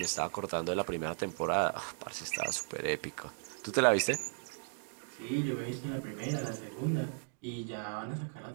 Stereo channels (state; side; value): silent; left; digital silence